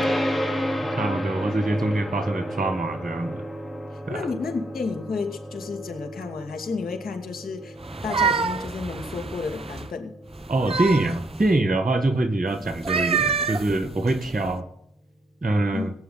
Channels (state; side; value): normal; both; correlation 0.74